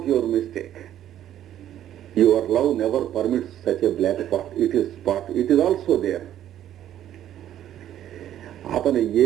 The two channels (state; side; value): quieter; left; 11.5 dB